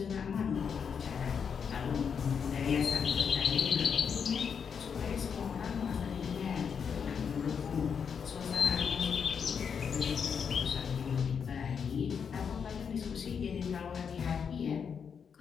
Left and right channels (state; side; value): quieter; right; 6.8 dB